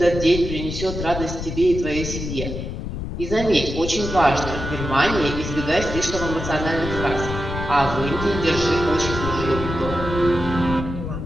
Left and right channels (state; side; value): noise; left; rumble, 6 dB below the sound